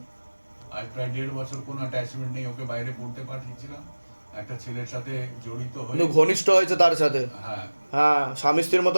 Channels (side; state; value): both; inverted; correlation -1.00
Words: আজ প্রায় 1.5 বছর কোনো অ্যাটাচমেন্ট নেই। ওকে বাইরে পড়তে পাঠিয়েছিলাম, একটা ছেলের সাথে জড়িত হয়ে কিন্তু ঘনিষ্ঠ হয়েছে তার সাথে, হ্যাঁ হ্যাঁ স্বামী স্ত্রীর